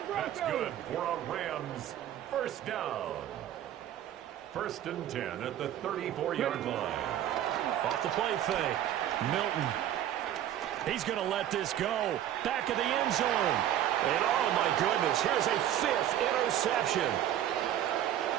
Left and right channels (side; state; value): left; quieter; 11.6 dB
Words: That's good for a Rams first down. 1st and 10 at the 34-yard line. Off the play fake. Milton. He's going to let this go. Back of the end zone. And oh my goodness, here's a 5th interception.